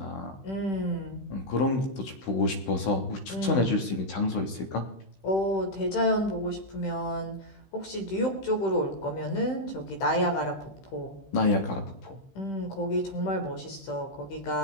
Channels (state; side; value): late; right; 16 ms